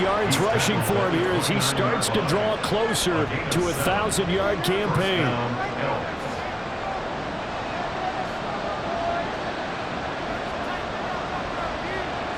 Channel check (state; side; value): identical; both; correlation 1.00